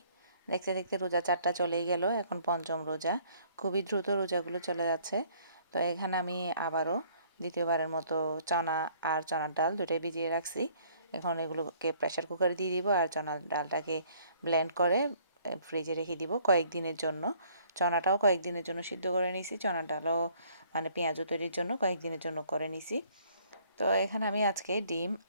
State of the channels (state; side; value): inverted; both; correlation -0.60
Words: দেখতে দেখতে রোজা 4টা চলেই গেল। এখন পঞ্চম রোজা। খুবই দ্রুত রোজাগুলো চলে যাচ্ছে। তো এখানে আমি আবারও দ্বিতীয়বারের মতো চনা আর চনার ডাল দুটোই ভিজিয়ে রাখছি। এখন এগুলোকে প্রেসার কুকারে দিয়ে দিব আর চনার ডালটাকে ব্লেন্ড করে ফ্রিজে রেখে দিব কয়েকদিনের জন্য। চনাটাও কয়েকদিনের জন্য সিদ্ধ করে নিছি, চনার ডালও মানে পেঁয়াজু তৈরির জন্য কয়েকদিনের জন্য করে নিছি। তো এখানে আমি আজকে ডিম